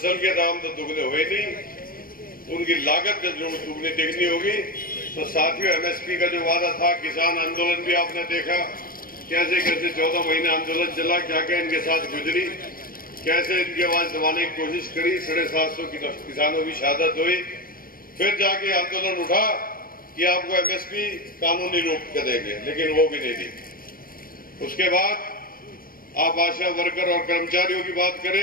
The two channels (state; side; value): late; right; 0.41 ms